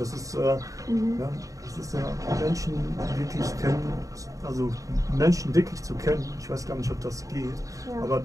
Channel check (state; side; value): late; left; 0.16 ms